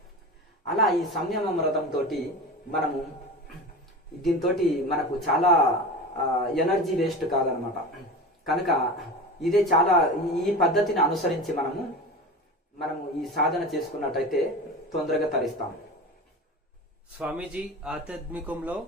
అలా ఈ సంయమ వ్రతంతో మనము దీంతో మనకు చాలా ఎనర్జీ వేస్ట్ కాదనమాట. కనుక ఇదే చాలా ఈ పద్ధతిని అనుసరించి మనము ఈ సాధన చేసుకున్నట్టయితే తొందరగా తరిస్తాం. స్వామీజీ, ఆధ్యాత్మికంలో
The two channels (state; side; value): normal; both; correlation 0.30